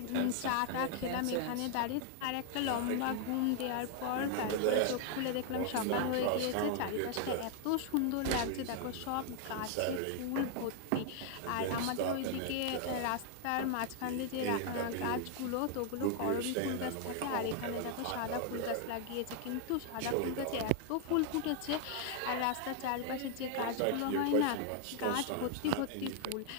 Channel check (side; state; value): both; different; correlation 0.00